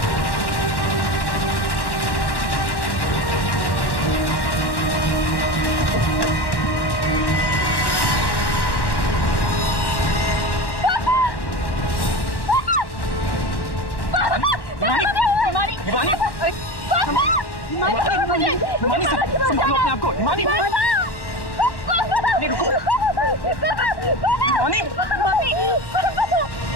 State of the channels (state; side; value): late; right; 1.1 ms